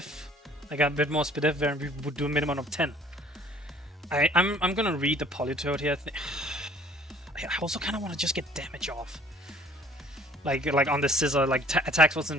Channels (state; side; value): normal; both; correlation 0.54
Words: like a bit more speed def variant, we would do a minimum of 10. I'm gonna read the Politoad here. I also kind of want to just get damage off, like on the scissor, like attacks what's